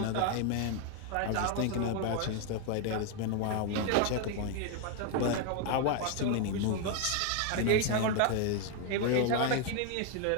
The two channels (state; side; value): different; both; correlation 0.01